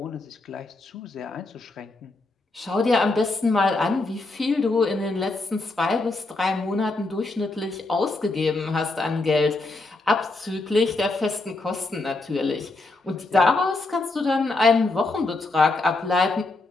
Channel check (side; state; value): right; quieter; 3.2 dB